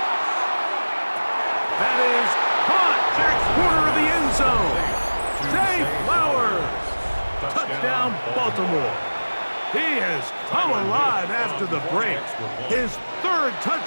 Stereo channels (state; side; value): inverted; both; correlation -1.00